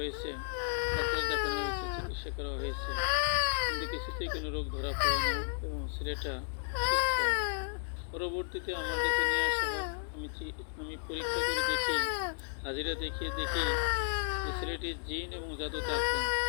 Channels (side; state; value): right; silent; digital silence